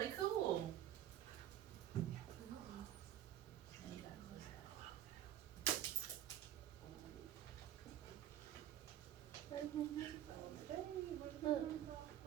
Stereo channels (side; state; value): left; quieter; 11.7 dB